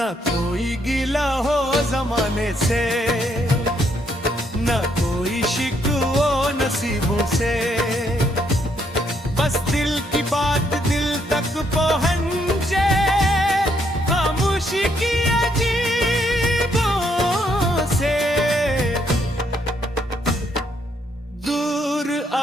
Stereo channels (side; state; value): both; normal; correlation 0.73